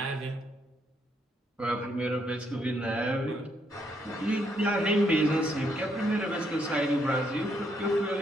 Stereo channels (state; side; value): normal; both; correlation 0.74